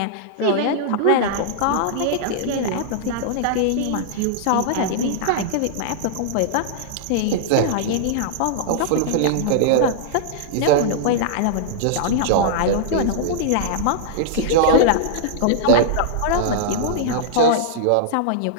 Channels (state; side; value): different; both; correlation -0.01